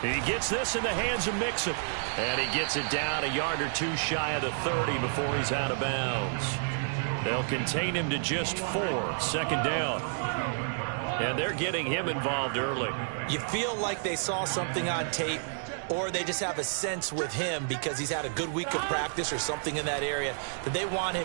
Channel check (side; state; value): left; silent; 58 dB below the other